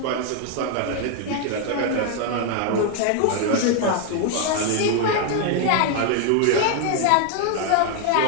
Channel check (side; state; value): both; different; correlation 0.01